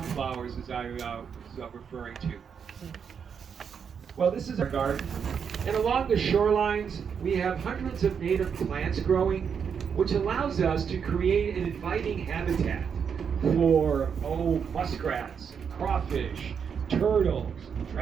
flowers as I was referring to. Well, this is our garden. And along the shorelines, we have hundreds of native plants growing, which allows us to create an inviting habitat for, muskrats, crawfish, turtles,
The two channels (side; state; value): left; quieter; 7.0 dB